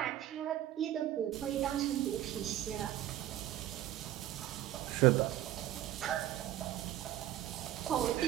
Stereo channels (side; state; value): left; quieter; 13.0 dB